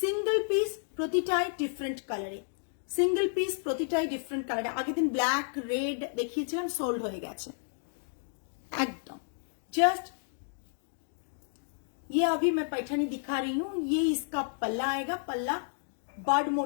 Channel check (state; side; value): silent; right; digital silence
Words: পিস, প্রতিটাই ডিফারেন্ট কালারে, সিঙ্গেল পিস প্রতিটাই ডিফারেন্ট কালারে। আগের দিন ব্ল্যাক রেড দেখিয়েছিলাম, সোল্ড হয়ে গেছে একদম। जस्ट ये अभी मैं पैठानी दिखा रही हूं, ये इसका पल्ला आएगा, पल्ला बर्ड